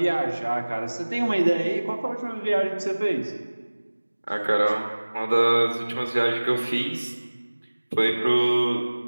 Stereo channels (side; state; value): both; inverted; correlation -1.00